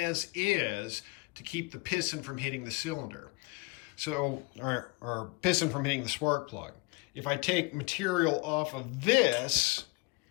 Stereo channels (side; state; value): right; quieter; 27.7 dB